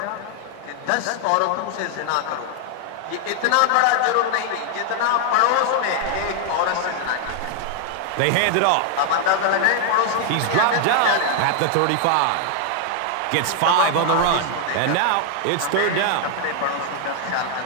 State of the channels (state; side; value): different; both; correlation 0.00